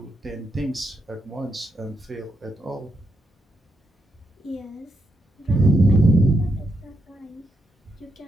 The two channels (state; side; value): normal; both; correlation 0.81